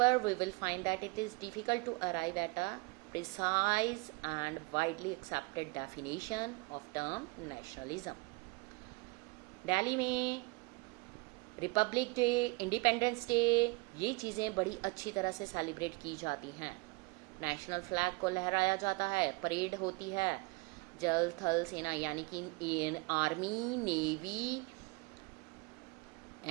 we will find that it is difficult to arrive at a precise and widely accepted definition of term nationalism. Delhi में Republic day, independence day, ये चीज़ें बड़ी अच्छी तरह से celebrate की जाती हैं। नेशनल फ्लैग को लहराया जाता है, परेड होती है, जल थल सेना यानी कि army, navy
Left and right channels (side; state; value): left; quieter; 25.4 dB